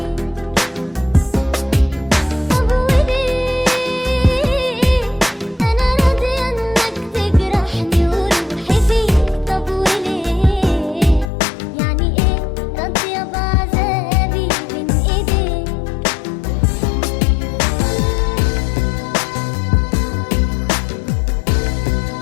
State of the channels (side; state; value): right; drops out; at 11.3 s